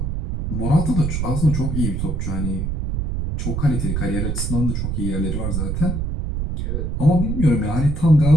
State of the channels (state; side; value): noise; right; rumble, 2 dB below the sound